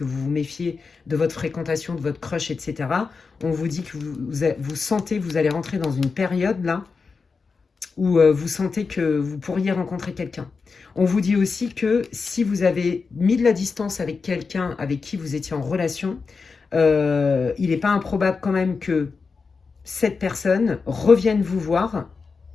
vous vous méfiez de votre fréquentation, de votre crush, etc. On vous dit que vous sentez, vous allez rentrer dans une période là où vous sentez que vous pourriez rencontrer quelqu'un. On vous dit aussi que si vous avez mis de la distance avec quelqu'un avec qui vous étiez en relation, il n'est pas improbable quand même que cette personne revienne vous voir,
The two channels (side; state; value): right; quieter; 4.8 dB